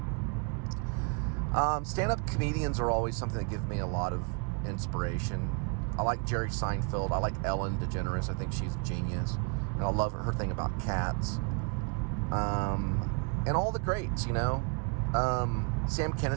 Stand-up comedians are always something that give me a lot of inspiration. I like Jerry Seinfeld. I like Ellen DeGeneres. I think she's a genius. And I love her thing about cats. And all the greats, you know. Sam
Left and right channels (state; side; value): quieter; left; 34.2 dB